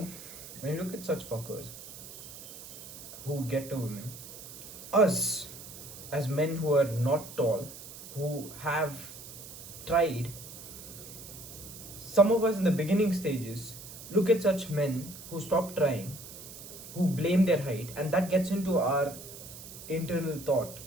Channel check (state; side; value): noise; right; hiss, 14 dB below the sound